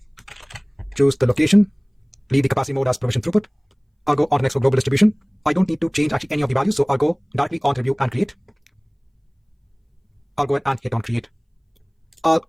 Choose the location. Leave the capacity mode as provision throughput. I'll go on to next for global distribution. I don't need to change actually any of the values, so I'll go directly on to review and create. I'll go ahead and hit on create. I'll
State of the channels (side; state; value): both; identical; correlation 1.00